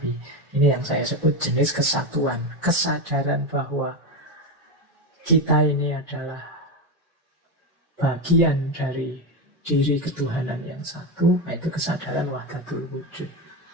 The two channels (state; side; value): normal; both; correlation 0.14